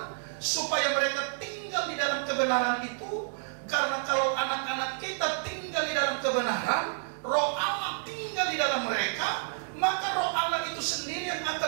supaya mereka tinggal di dalam kebenaran itu. Karena kalau anak-anak kita tinggal di dalam kebenaran, Roh Allah tinggal di dalam mereka, maka Roh Allah itu sendiri yang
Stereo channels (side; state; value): left; silent; digital silence